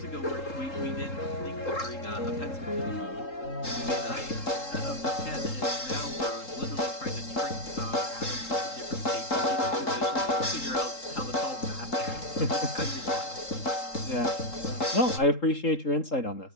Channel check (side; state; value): right; late; 3.8 ms